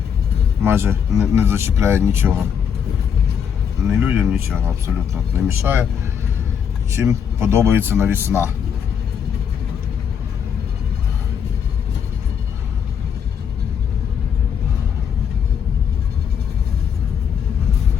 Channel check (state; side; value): quieter; right; 7.6 dB